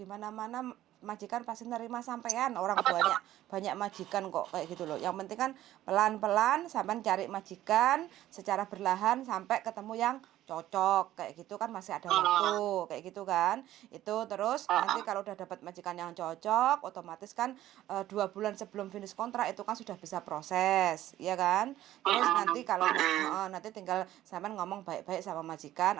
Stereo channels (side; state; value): left; quieter; 13.8 dB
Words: mana-mana majikan pasti nerima sampean. Orang banyak banyak majikan kok kayak gitu loh. Yang penting kan pelan-pelan sampean cari majikan secara berlahan sampai ketemu yang cocok kayak gitu kan, masih ada waktu kayak gitu kan. Itu terus nanti kalau udah dapat majikan yang cocok, otomatis kan 2 bulan sebelum finish kontrak itu kan sudah bisa proses, ya kan. Terus nanti kalau nanti tinggal sampean ngomong baik-baik sama majikan,